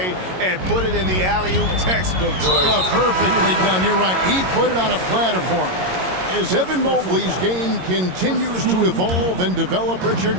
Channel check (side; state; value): left; late; 22 ms